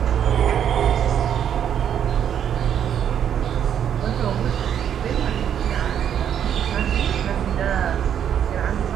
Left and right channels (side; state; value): left; quieter; 9.2 dB